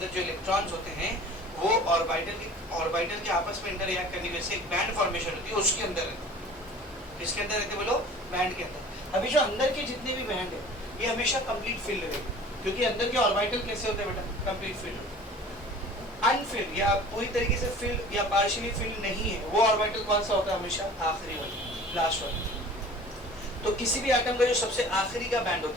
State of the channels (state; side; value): normal; both; correlation 0.44